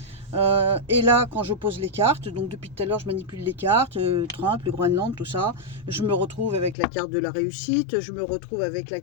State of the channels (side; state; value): right; drops out; at 6.8 s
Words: Et là, quand je pose les cartes, donc depuis tout à l'heure, je manipule les cartes, Trump, le Groenland, tout ça. Je me retrouve avec la carte de la réussite, je me retrouve avec la